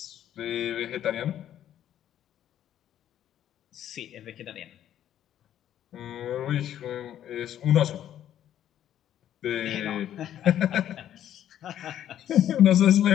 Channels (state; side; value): quieter; right; 11.1 dB